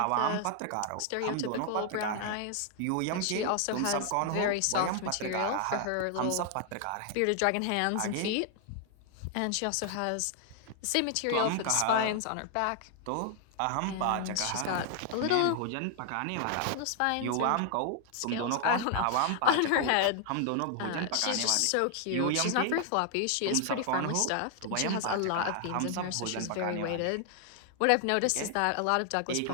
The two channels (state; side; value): different; both; correlation 0.00